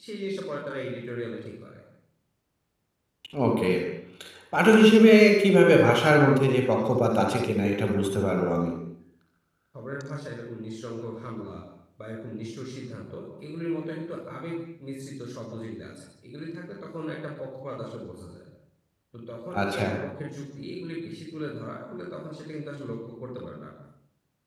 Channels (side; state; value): both; identical; correlation 1.00